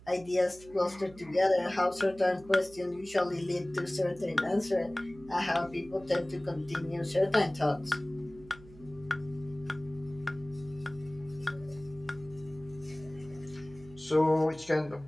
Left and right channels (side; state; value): right; noise; hum, 21 dB below the sound